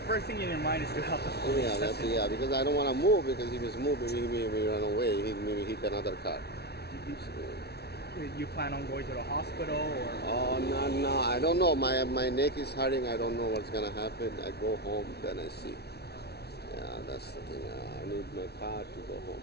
thing in your mind is to help the police. Yeah, because I don't want to move, because if he's moving, he may run away. He may hit another car. You plan on going to the hospital or? Oh no, I don't know. My neck is hurting. I don't know what's gonna happen. I go home, then I see. Yeah, that's the thing. I need my car to go home,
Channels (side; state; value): right; late; 0.48 ms